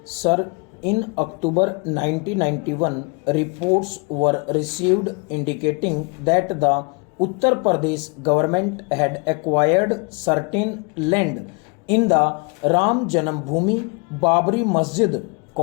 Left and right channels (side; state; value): right; quieter; 31.4 dB